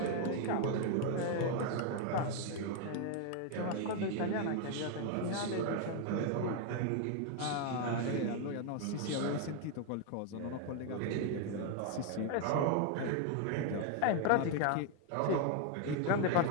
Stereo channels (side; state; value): both; different; correlation 0.01